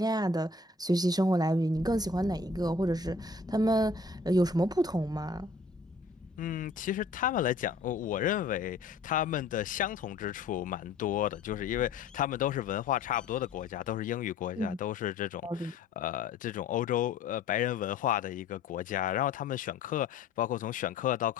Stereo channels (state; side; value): quieter; right; 3.8 dB